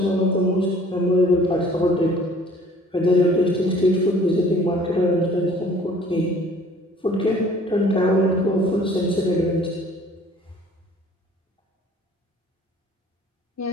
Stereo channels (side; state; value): both; normal; correlation 0.53